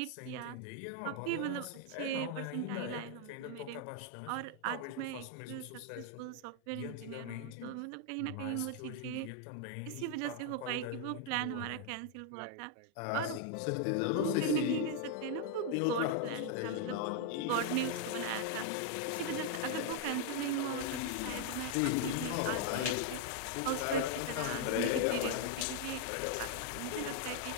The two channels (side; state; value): both; different; correlation 0.00